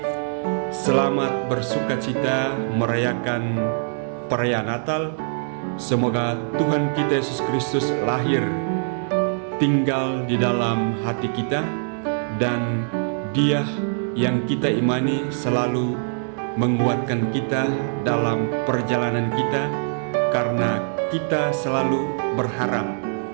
selamat bersukacita merayakan perayaan Natal. Semoga Tuhan kita Yesus Kristus lahir, tinggal di dalam hati kita, dan Dia yang kita imani selalu menguatkan kita dalam perjalanan kita, karena kita selalu berharap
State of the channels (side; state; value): left; silent; digital silence